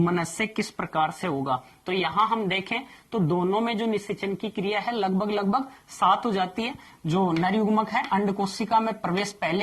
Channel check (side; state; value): both; identical; correlation 1.00